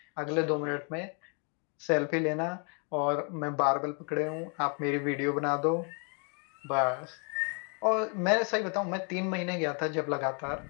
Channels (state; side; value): quieter; right; 38.2 dB